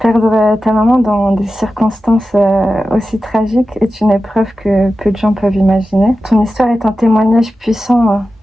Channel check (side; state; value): both; normal; correlation 0.93